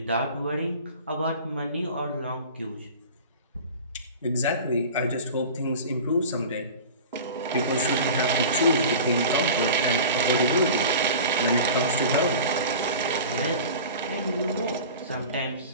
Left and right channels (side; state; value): both; inverted; correlation -0.37